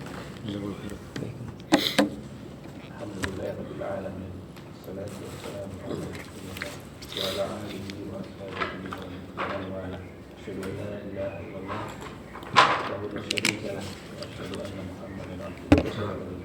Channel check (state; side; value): identical; both; correlation 1.00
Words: Jazakallahu khairan. Alhamdulillahirabbil alamin. Wassalatu wassalamu ala rasulillah wa ala alihi wa ashabihi wa man wala. Asyhadu an la ilaha illallah wahdahu la syarika lah wa asyhadu anna Muhammadan abduhu